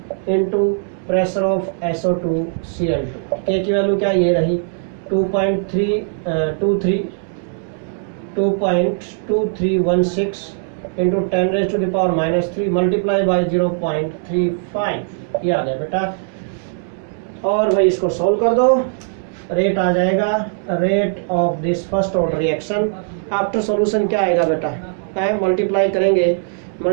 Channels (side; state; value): left; silent; 66 dB below the other